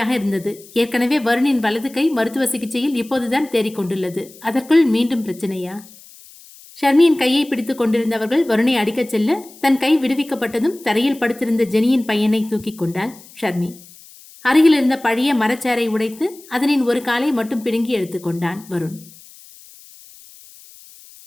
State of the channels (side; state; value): left; noise; hiss, 22 dB below the sound